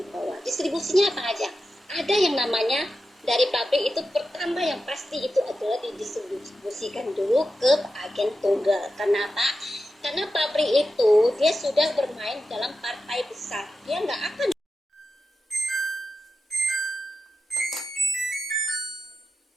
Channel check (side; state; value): both; normal; correlation 0.90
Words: bawah. Distribusinya apa aja? Ada yang namanya dari pabrik itu, pertama yang pasti itu adalah didistribusikan dulu ke agen tunggal. Kenapa? Karena pabrik itu dia sudah bermain dalam partai besar, dia nggak akan